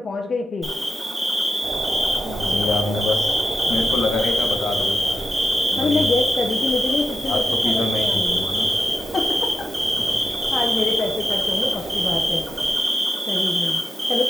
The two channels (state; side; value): normal; both; correlation 0.87